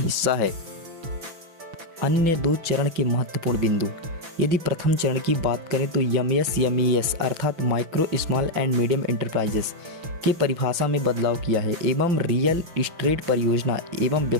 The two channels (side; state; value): left; late; 6.0 ms